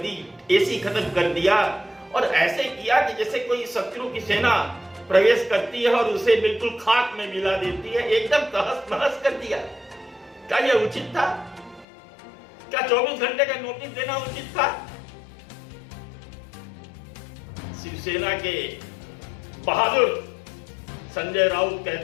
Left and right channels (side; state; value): right; drops out; at 11.9 s